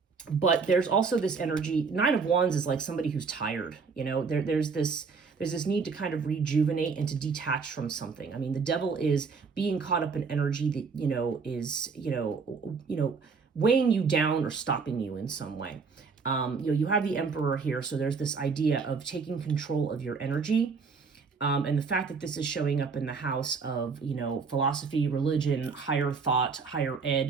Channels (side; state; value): left; quieter; 5.1 dB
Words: But there's also this energy. 9 of Wands is like somebody who's tired. There's this need to kind of rejuvenate and to detach from something. I mean, the Devil is being caught up in energy that, is, weighing you down or stopping you in some way. You have the Emperor here. So there's this idea of taking control of your energy. And the fact that this is showing up in the house of, philosophy, religion, higher thought, higher